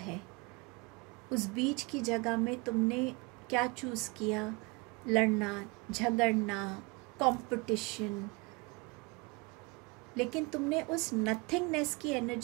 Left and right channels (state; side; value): quieter; left; 27.5 dB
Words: है, उस बीच की जगह में तुमने क्या चूज़ किया? लड़ना, झगड़ना, कंपटीशन। लेकिन तुमने उस नथिंगनेस की